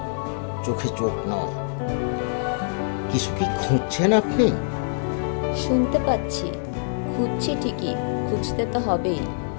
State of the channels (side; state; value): right; silent; digital silence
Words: চোখে চোখ নয়। কিছু কি খুঁজছেন আপনি? শুনতে পাচ্ছি, খুঁজছি ঠিকই, খুঁজতে তো হবেই,